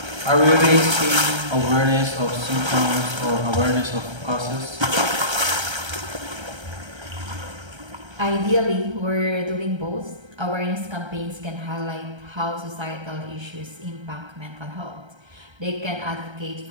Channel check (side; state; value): left; late; 1.3 ms